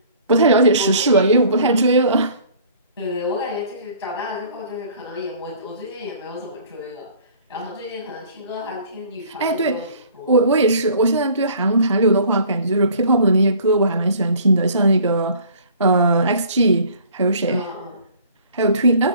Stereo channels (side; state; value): both; inverted; correlation -0.52